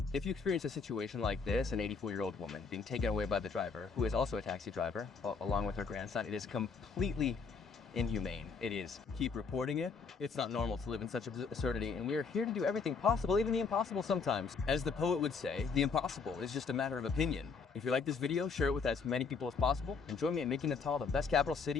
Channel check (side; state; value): right; quieter; 5.1 dB